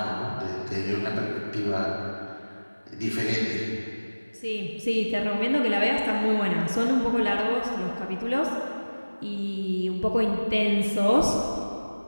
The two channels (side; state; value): both; inverted; correlation -1.00